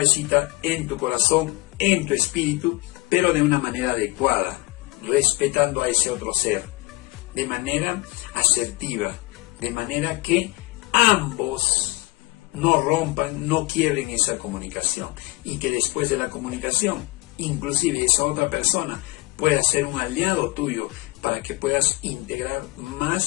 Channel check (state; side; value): quieter; right; 21.0 dB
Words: en tu corazón, en tu espíritu, pero de una manera adecuada, respetando a ese otro ser, de manera asertiva, de manera que ambos no rompan, no quiebren esa comunicación, y que después de la comunicación, inclusive esa otra persona pueda ser un aliado tuyo para que puedas integrar